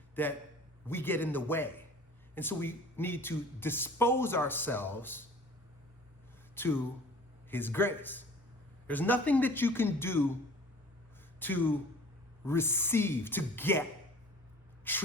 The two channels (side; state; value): both; normal; correlation 0.46